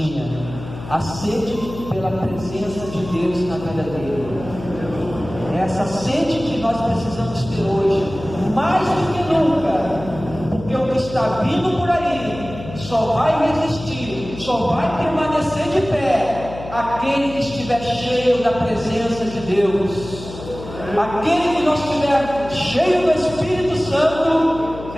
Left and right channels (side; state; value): left; noise; hum, 13 dB below the sound